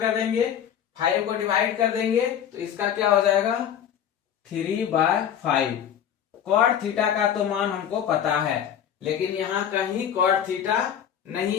देंगे, 5 को डिवाइड कर देंगे तो इसका क्या हो जाएगा 3/5। कॉट थीटा का तो मान हमको पता है, लेकिन यहाँ कहीं कॉट थीटा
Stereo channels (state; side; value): quieter; right; 9.3 dB